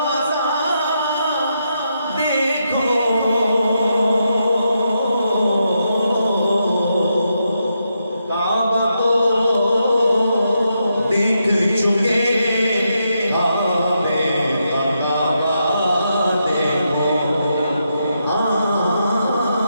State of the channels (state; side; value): inverted; both; correlation -0.83